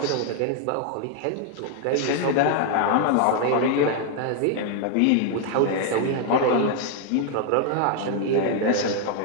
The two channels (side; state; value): both; different; correlation 0.00